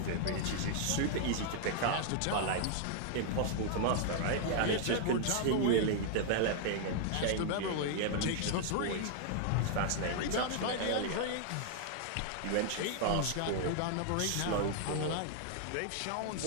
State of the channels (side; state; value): both; different; correlation 0.00